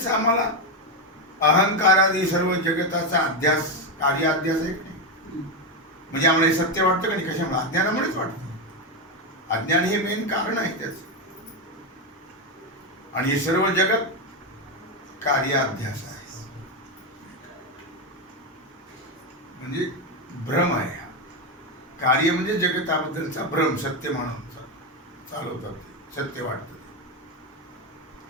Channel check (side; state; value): both; normal; correlation 0.08